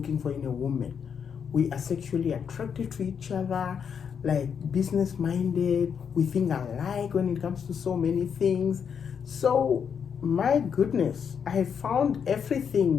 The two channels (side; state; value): right; quieter; 7.1 dB